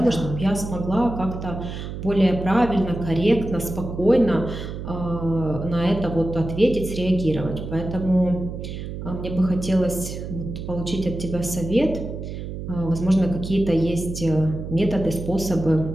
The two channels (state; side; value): noise; right; hum, 7 dB below the sound